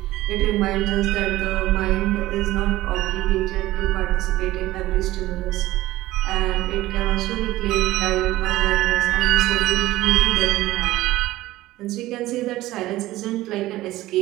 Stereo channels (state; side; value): quieter; left; 16.5 dB